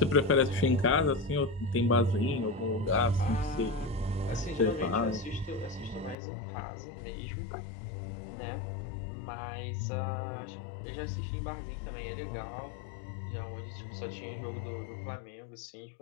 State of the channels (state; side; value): drops out; right; at 6.2 s